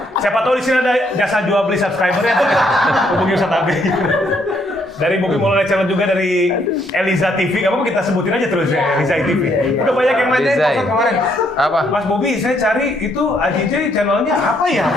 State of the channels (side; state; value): both; normal; correlation 0.71